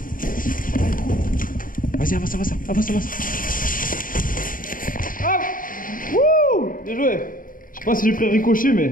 Vas-y, avance, avance, avance, avance. Ah! Wouh! Bien joué! Je sais pas si j'ai pris un ricochet, mais...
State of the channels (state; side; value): late; right; 0.40 ms